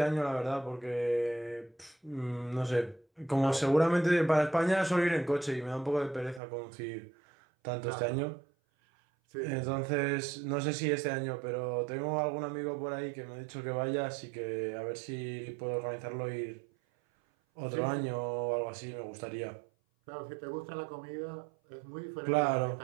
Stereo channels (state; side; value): drops out; left; at 6.4 s